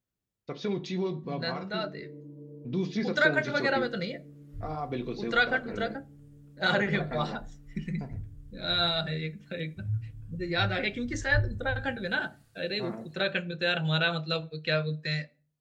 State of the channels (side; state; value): both; identical; correlation 1.00